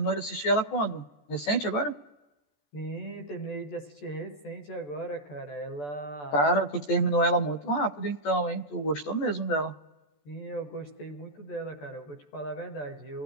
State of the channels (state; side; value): late; right; 14 ms